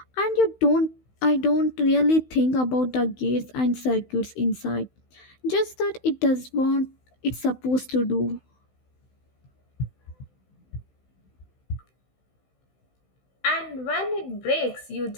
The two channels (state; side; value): late; right; 16 ms